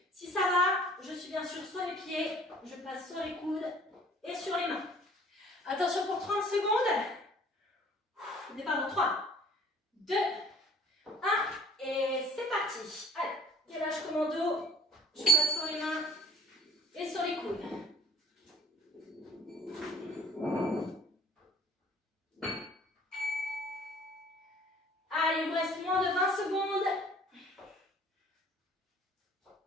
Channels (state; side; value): normal; both; correlation 0.53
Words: Si ça va, je suis bien sûr sur les pieds. Je passe sur les coudes et sur les mains. Attention pour 30 secondes. Départ dans 3, 2, 1 et c'est parti. Allez, gainage commando. Je passe sur les mains et sur les coudes. Allez, il vous reste moins de 20 secondes.